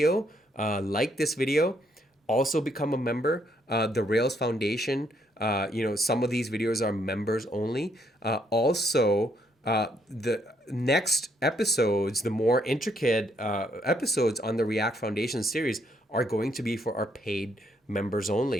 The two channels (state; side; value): normal; both; correlation 0.72